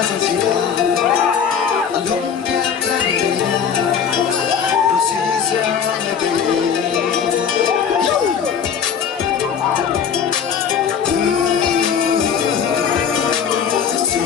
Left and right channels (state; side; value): quieter; right; 7.4 dB